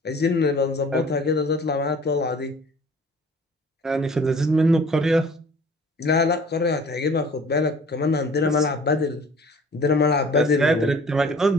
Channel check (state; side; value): normal; both; correlation 0.49